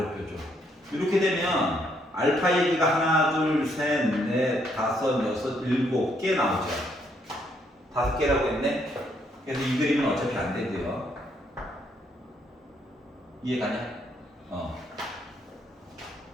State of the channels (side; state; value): both; normal; correlation 0.72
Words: 뾰족. 이렇게 되면 알파 얘기가 하나, 둘, 셋, 넷, 다섯, 여섯, 일곱 개 나오죠. 5개라고 했네. 그래서 이 그림은 어차피 안 되고요. 이해가냐?